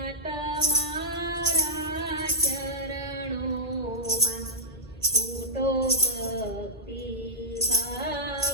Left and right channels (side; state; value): both; normal; correlation -0.15